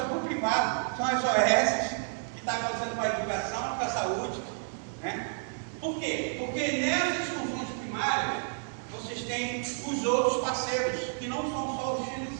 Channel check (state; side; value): silent; left; digital silence